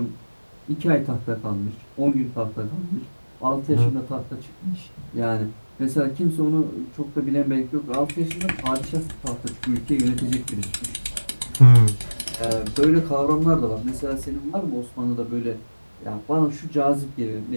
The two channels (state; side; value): inverted; both; correlation -1.00